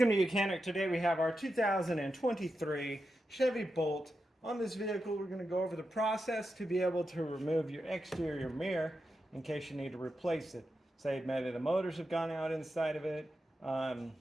to Mechanic. Today we have our 2023 Chevy Bolt. On this vehicle we're going to go over the process to be able to remove your exterior mirror in case you need to replace it. Say maybe the motors have gone out inside of it,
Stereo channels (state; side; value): normal; both; correlation 0.88